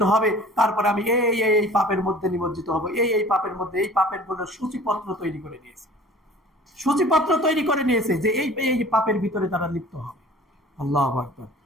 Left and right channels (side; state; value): both; normal; correlation 0.46